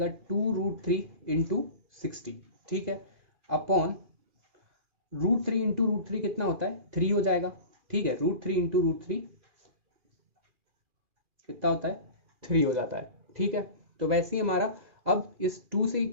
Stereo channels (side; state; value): left; late; 2.4 ms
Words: 2√3 इंटू 60, ठीक है, अपॉन √3 इंटू √3 कितना होता है 3 हो जाएगा, ठीक है, √3 इंटू √3 कितना होता है 3 हो जाता है, ठीक है। तो वैसे ही हमारा अब इस 2 से